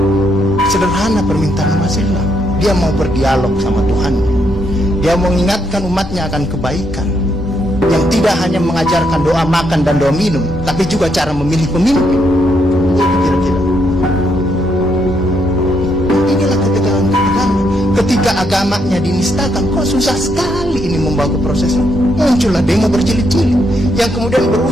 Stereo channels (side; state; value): both; normal; correlation 0.76